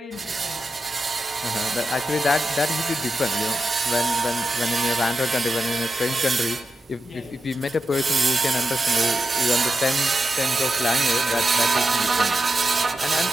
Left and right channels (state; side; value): normal; both; correlation 0.89